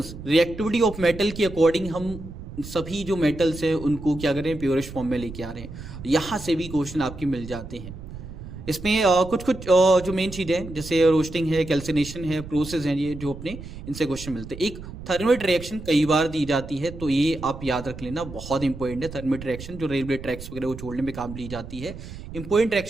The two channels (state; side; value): noise; right; rumble, 12 dB below the sound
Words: रिएक्टिविटी ऑफ मेटल की अकॉर्डिंग हम सभी जो मेटल्स हैं उनको क्या करें, प्योरेस्ट फॉर्म में लेके आ रहे हैं। यहाँ से भी क्वेश्चन आपके मिल जाते हैं। इसमें कुछ जो मेन चीजें हैं, जैसे रोस्टिंग है, कैल्सिनेशन है, प्रोसेस है, ये जो अपने इनसे क्वेश्चन मिलते हैं। एक थर्मेट रिएक्शन कई बार दी जाती है, तो ये आप याद रख लेना, बहुत इंपॉर्टेंट है। थर्मेट रिएक्शन जो रेलवे ट्रैक्स वगैरह को छोड़ने में काम ली जाती है, इंपॉर्टेंट